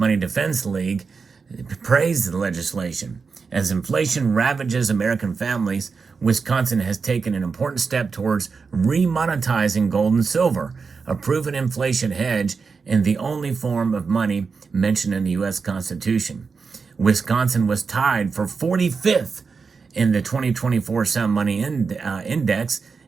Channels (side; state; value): left; quieter; 5.0 dB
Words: Defense League, praised the legislation As inflation ravages American families, Wisconsin has taken an important step towards remonetizing gold and silver, a proven inflation hedge and the only form of money mentioned in the U.S. Constitution. Wisconsin was tied for 45th in the 2024 Sound Money Index.